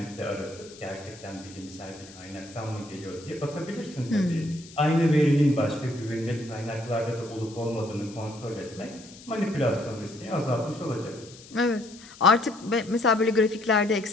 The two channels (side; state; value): left; noise; hiss, 20 dB below the sound